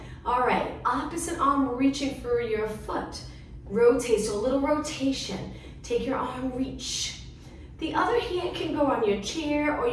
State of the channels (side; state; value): both; identical; correlation 1.00